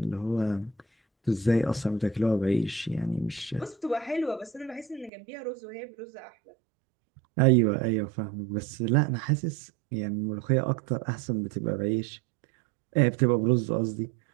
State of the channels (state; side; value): drops out; left; at 5.1 s